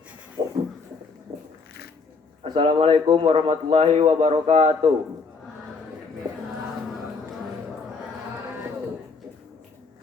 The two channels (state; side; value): quieter; right; 4.6 dB